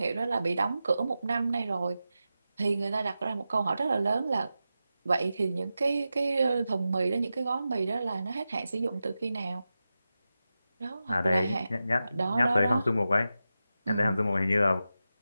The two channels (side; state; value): both; inverted; correlation -0.92